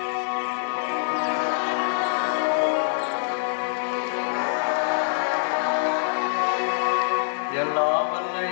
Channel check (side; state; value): right; silent; 62 dB below the other